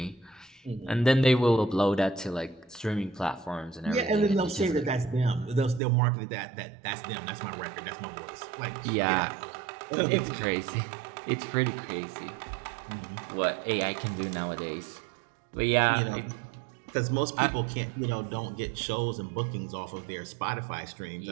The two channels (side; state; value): left; drops out; at 5.8 s